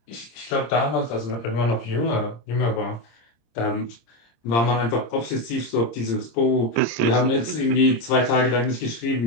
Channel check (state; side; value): late; right; 26 ms